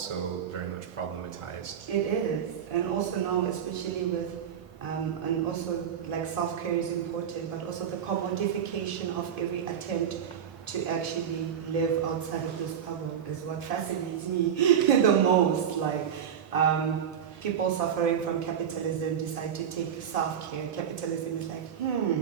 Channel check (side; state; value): left; quieter; 8.5 dB